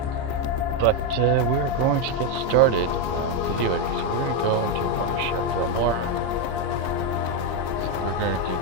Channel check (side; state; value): left; late; 14 ms